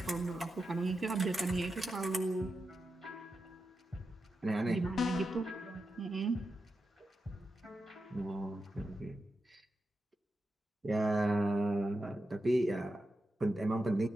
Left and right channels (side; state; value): both; normal; correlation 0.89